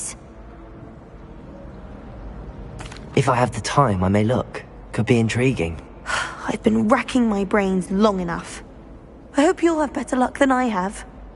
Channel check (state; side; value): identical; both; correlation 1.00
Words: If I have the time, I may look. Could be intriguing. I've been racking my brains long enough. I hope you'll have better luck than I have.